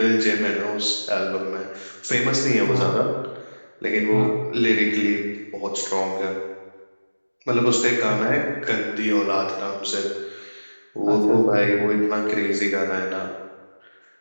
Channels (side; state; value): both; inverted; correlation -1.00